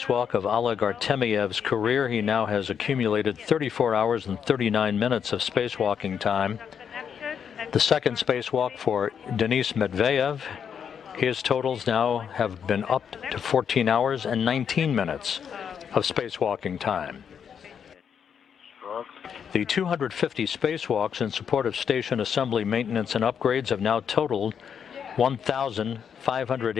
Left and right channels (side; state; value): right; quieter; 7.6 dB